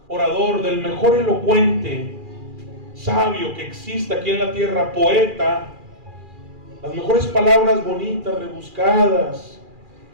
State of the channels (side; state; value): left; late; 2.4 ms